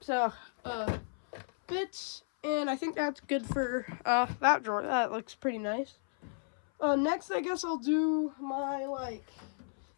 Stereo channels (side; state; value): right; silent; 56 dB below the other